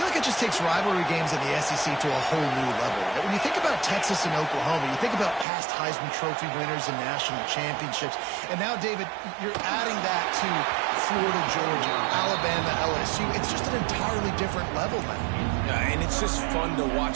like it just takes rivalry games in the SEC to a whole new level. Right? When you think about Texas and Oklahoma, you think about past Heisman Trophy winners and national championships. And now, David, you're adding that to Florida, Georgia, Alabama, LSU. It's just an entirely different level now. Yeah, and it's just fun to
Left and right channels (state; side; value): drops out; left; at 5.5 s